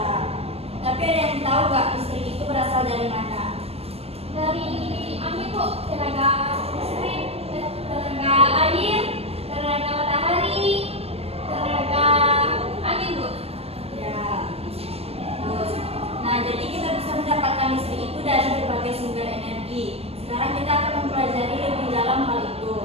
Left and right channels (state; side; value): late; left; 0.29 ms